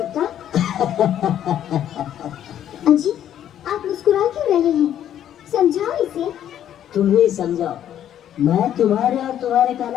अजी आप मुस्कुरा क्यों रहे हैं? समझाओ इसे। तुम ही समझाओ, मैं तुम्हारे और तुम्हारे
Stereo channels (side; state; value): right; quieter; 10.6 dB